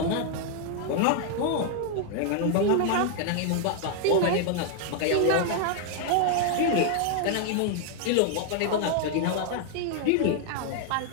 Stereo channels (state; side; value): different; both; correlation 0.00